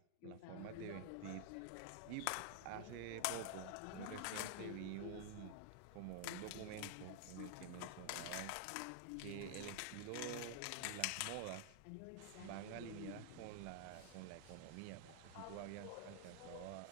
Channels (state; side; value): different; both; correlation 0.00